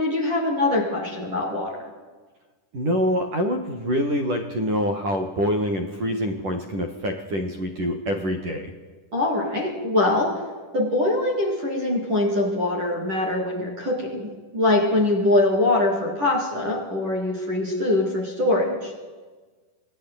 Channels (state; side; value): late; left; 10 ms